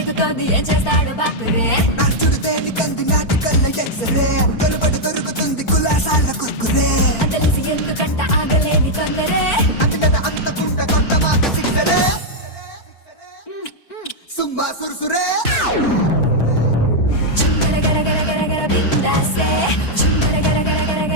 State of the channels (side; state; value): right; late; 4.4 ms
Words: ఏం చేస్తాడో బాపురే. నడుచుడు తేని కంది నాటి కళ్ళ ఎక్సరే కలుబడి దొరుకుతుంది కులాసాల కుర్కురే. అంతలేసి ఎందుకంట ఆగలేని తొందరే. అంతట అంతకుంట కొత్త మాట సిక్సరే సుమ్మా సురుసురే. చుంగర గర గర గర గర బిందాసే. చుంగర గర గర గర